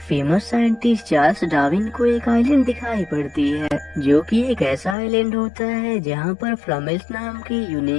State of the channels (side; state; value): right; drops out; at 5.0 s